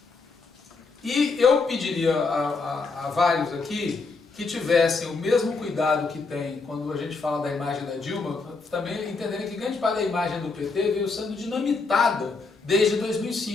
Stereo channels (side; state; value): right; quieter; 4.1 dB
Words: E eu pediria a vários aqui que tivessem o mesmo cuidado que tem quando a gente fala da imagem da Dilma, também entenderem que grande parte da imagem do PT veio sendo dinamitada desde